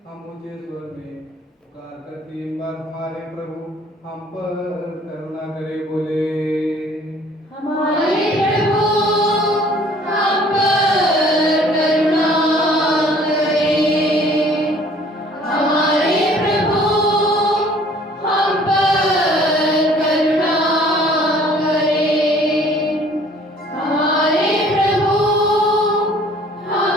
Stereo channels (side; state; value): both; normal; correlation 0.55